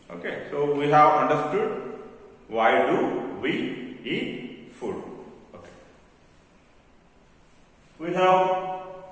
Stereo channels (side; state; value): both; identical; correlation 1.00